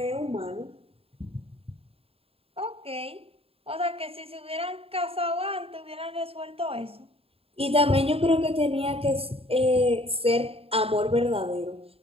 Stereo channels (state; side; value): late; left; 0.28 ms